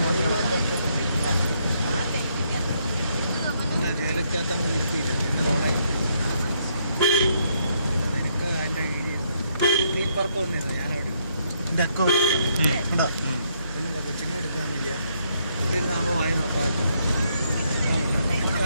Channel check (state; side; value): inverted; both; correlation -0.73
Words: ജയിലക്കകത്ത് നമ്മൾ ഇരുത്തിയില്ല എന്നെ തോളായി നിനക്ക് അതിൻ്റെ കീഴിയിരുന്നു നീ പുറത്ത് വന്നിരുന്നു ഞാനവിടെ എൻ്റെ അക്കൗണ്ട് ഉണ്ടോ പിന്നെ കൊച്ചിനെ എടുക്കാൻ വയ്യ ഇവിടെ ഇരുന്നാകുമ്പോൾ വായി നോക്കാൻ